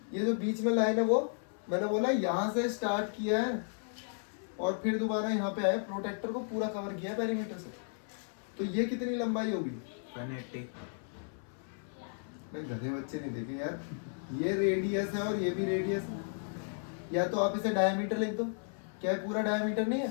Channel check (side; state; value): right; silent; 55 dB below the other